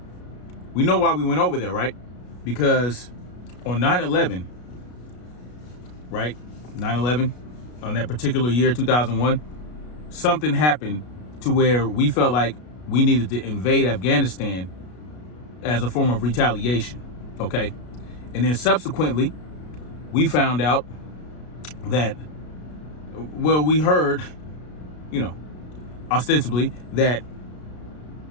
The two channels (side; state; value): right; late; 33 ms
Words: we know why we went over there, right? Because on 9/11, right? 9/11, on that particular year, 2001, something happened to where we felt like we needed to invade Afghanistan as a form of retaliation, okay? And then subsequently, we found out that, well, we heard, ostensibly that